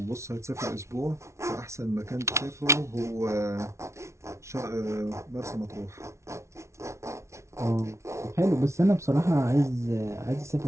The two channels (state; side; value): late; left; 0.13 ms